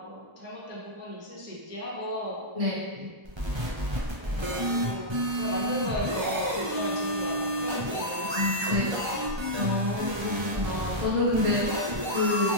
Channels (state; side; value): late; left; 1.3 ms